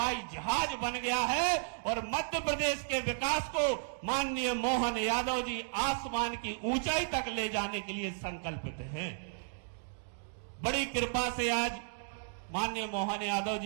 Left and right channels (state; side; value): silent; left; digital silence